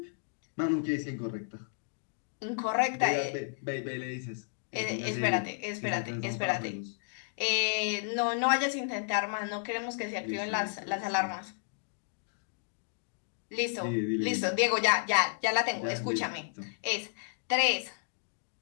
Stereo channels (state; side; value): silent; right; digital silence